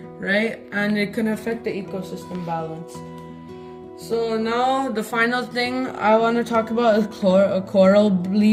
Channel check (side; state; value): both; identical; correlation 1.00